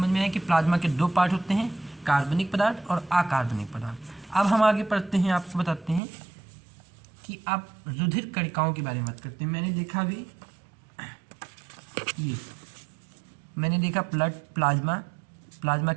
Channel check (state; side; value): drops out; left; at 6.0 s